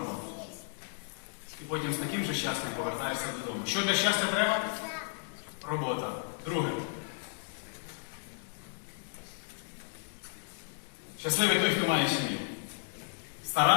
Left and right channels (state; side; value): silent; right; digital silence